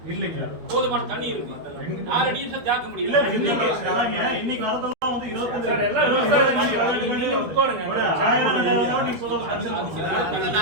இல்லைங்க, போதுமான தண்ணி இருக்கு. 4 டீம் ஜாக்க முடியல. இன்னைக்கு வரதெல்லாம் வந்து 22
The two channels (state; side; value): late; left; 12 ms